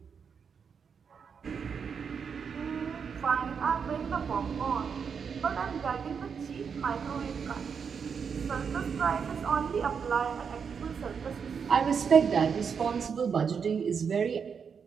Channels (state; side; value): quieter; left; 6.4 dB